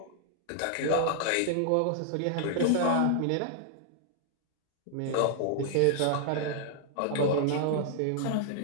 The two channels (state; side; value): different; both; correlation 0.00